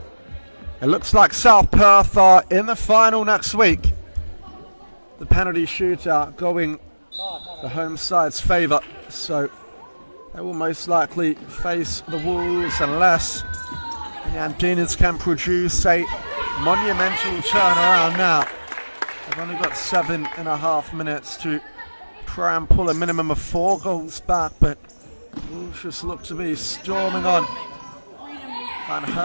it looks like South Perth are in the final next week. The penalty shootout going the home side's favour, so they will most likely face the Wolves unless the Andinas can produce a monumental turnaround now. They've only got 7.5 minutes to try and pull a minimum of 4 goals back, but Wolves just look to be storming on. Van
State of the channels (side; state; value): both; inverted; correlation -1.00